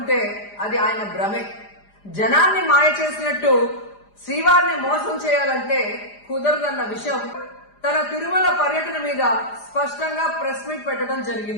అది ఆయన భ్రమే. జనాన్ని మాయ చేసినట్టు శ్రీవారిని మోసం చేయాలంటే కుదరదన్న విషయం తన తిరుమల పర్యటన మీద స్పష్టంగా ప్రెస్ మీట్ పెట్టడం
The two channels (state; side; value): late; right; 4.9 ms